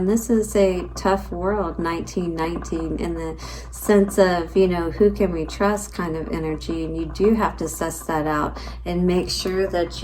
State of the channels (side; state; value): both; identical; correlation 1.00